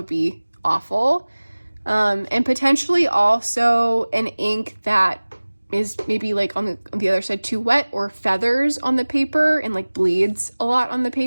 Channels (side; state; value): both; inverted; correlation -1.00